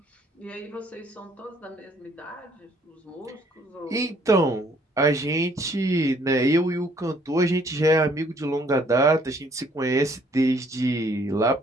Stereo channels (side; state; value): both; normal; correlation 0.63